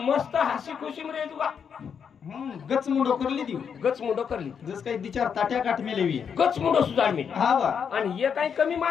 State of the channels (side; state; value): right; quieter; 7.1 dB